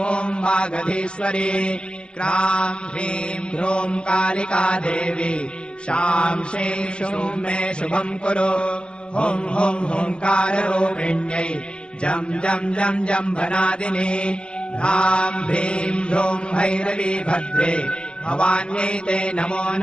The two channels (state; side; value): late; right; 0.051 ms